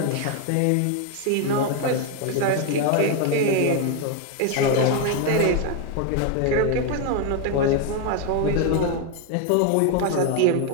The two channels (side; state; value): both; different; correlation 0.01